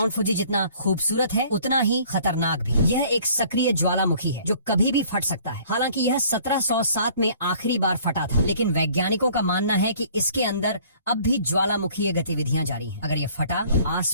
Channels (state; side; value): inverted; both; correlation -0.55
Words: फुजी जितना खूबसूरत है उतना ही खतरनाक भी। यह एक सक्रिय ज्वालामुखी है जो कभी भी फट सकता है। हालांकि यह 1707 में आखिरी बार फटा था, लेकिन वैज्ञानिकों का मानना है कि इसके अंदर अब भी ज्वालामुखीय गतिविधियां जारी हैं। अगर ये फटा